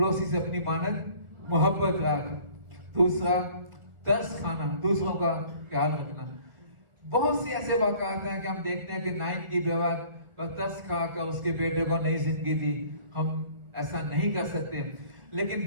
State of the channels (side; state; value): left; late; 1.7 ms